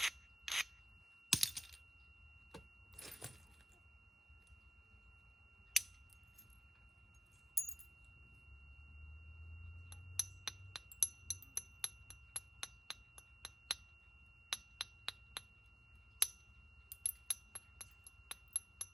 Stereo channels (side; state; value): both; normal; correlation 0.87